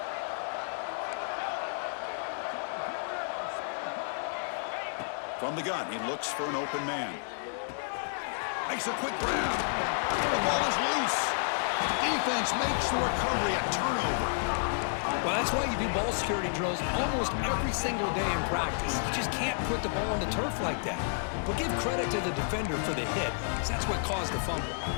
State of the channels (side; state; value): right; silent; digital silence